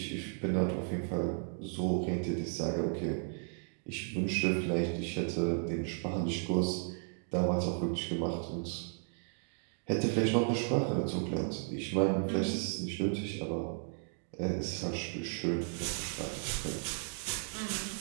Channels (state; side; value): silent; left; 55 dB below the other